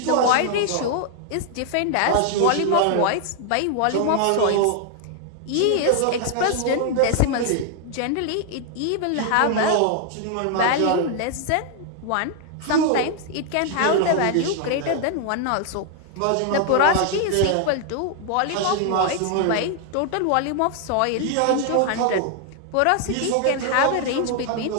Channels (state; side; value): different; both; correlation 0.00